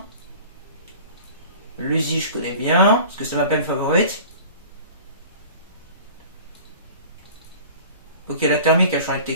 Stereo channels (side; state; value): both; inverted; correlation -0.43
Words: L'Uzi je connais bien, parce que c'est ma peine favorite. Ok, la thermique a changé de